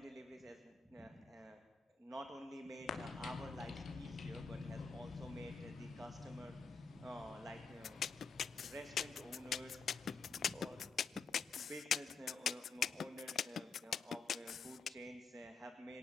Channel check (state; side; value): quieter; right; 5.2 dB